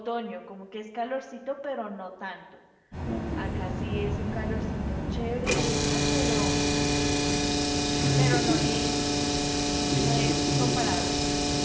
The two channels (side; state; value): both; identical; correlation 1.00